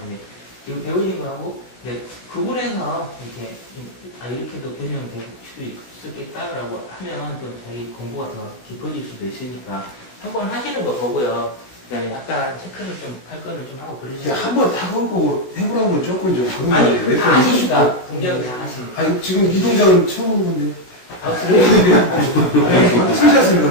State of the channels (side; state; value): right; late; 16 ms